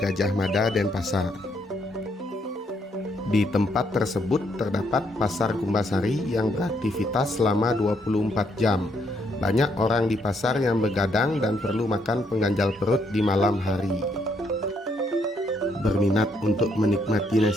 Mada, Denpasar. Di tempat tersebut terdapat pasar Kumbasari yang beraktivitas selama 24 jam. Banyak orang di pasar yang begadang dan perlu makan pengganjal perut di malam hari. Berminat untuk menikmati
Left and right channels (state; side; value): normal; both; correlation 0.73